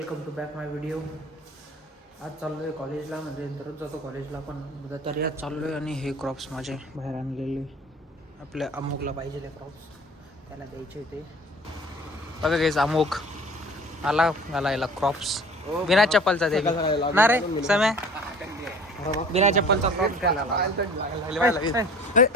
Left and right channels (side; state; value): both; normal; correlation 0.45